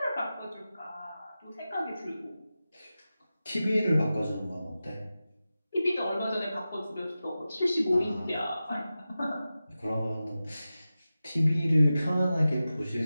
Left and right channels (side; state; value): both; inverted; correlation -0.94